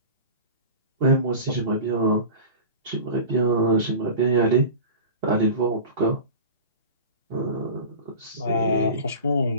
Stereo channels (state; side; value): inverted; both; correlation -0.33